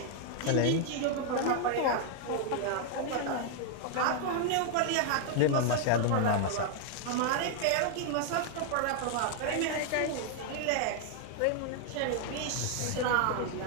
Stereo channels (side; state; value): both; different; correlation 0.00